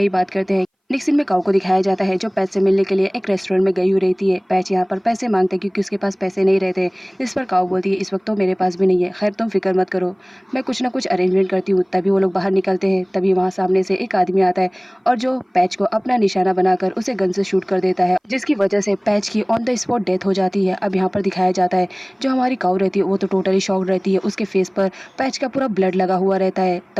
ही बात करते हैं। नेक्स्ट सीन में काऊ को दिखाया जाता है जो पैच से मिलने के लिए एक रेस्टोरेंट में गई हुई रहती है। पैच यहाँ पर पैसे मांगते हैं क्योंकि उसके पास पैसे नहीं रहते, जिस पर काऊ बोलती है इस वक्त तो मेरे पास भी नहीं है, खैर तुम फिक्र मत करो, मैं कुछ ना कुछ अरेंजमेंट करती हूँ। तभी वो लोग बाहर निकलते हैं, तभी वहाँ सामने से एक आदमी आता है और जो पैच को अपना निशाना बनाकर उसे गन से शूट कर देता है, जिसकी वजह से पैच की ऑन द स्पॉट डेथ हो जाती है। अब यहाँ पर दिखाया जाता है जो हमारी काऊ रहती है वो तो टोटली शॉक्ड रहती है, उसके फेस पर पैच का पूरा ब्लड लगा हुआ रहता है।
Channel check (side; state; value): both; identical; correlation 1.00